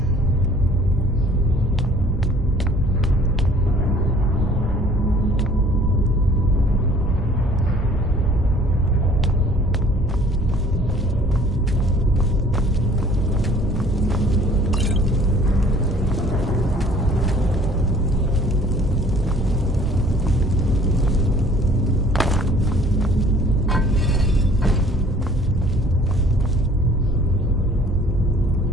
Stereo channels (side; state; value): both; normal; correlation 0.54